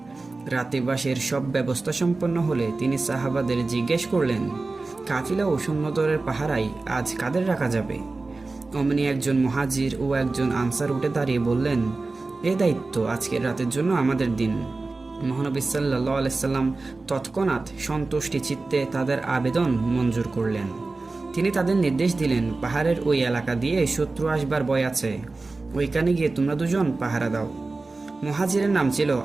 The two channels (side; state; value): left; quieter; 3.5 dB